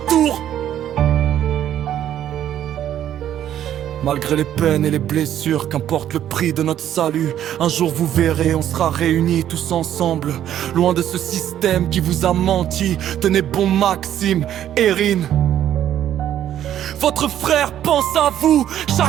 Malgré les peines et les blessures, qu'importe le prix de notre salut, un jour vous verrez, on sera réunis tous ensemble, loin de ce système qui vous a menti. Tenez bon Maxime, Erin. Votre frère pense à vous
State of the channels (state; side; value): quieter; left; 11.1 dB